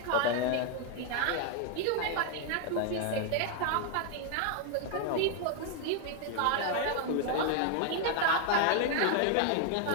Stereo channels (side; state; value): both; different; correlation 0.00